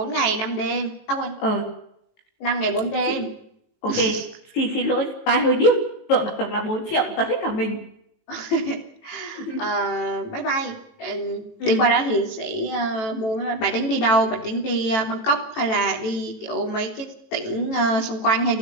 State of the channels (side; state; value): right; late; 18 ms